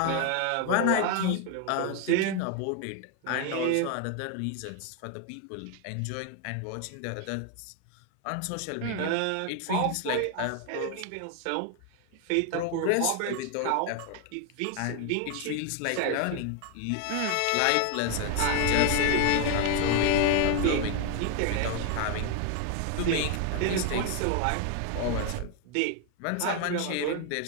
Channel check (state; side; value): different; both; correlation 0.01